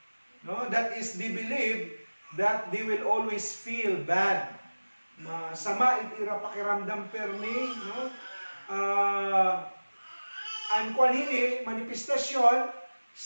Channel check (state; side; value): inverted; both; correlation -1.00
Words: No? That is, they believe that they will always feel bad. Masama itira pakiramdam permi, no? Ang kwanhini, manifestasyon,